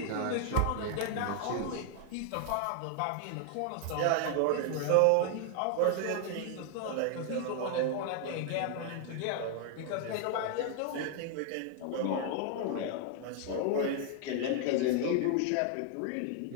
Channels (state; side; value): different; both; correlation 0.00